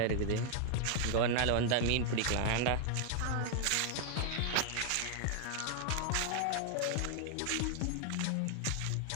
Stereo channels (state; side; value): different; both; correlation 0.00